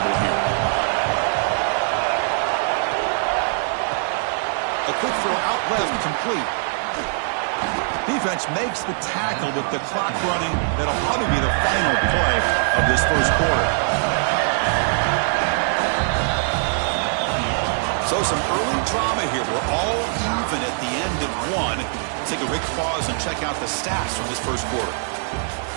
here? A quick throw out left, complete. Defense makes the tackle with the clock running. That'll probably be the final play of this first quarter. So some early drama here. We're all even at the end of one. Take a quick pause and check out the stats from this first quarter.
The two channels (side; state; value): left; silent; digital silence